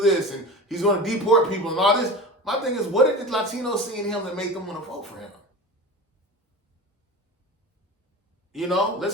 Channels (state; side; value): normal; both; correlation 0.31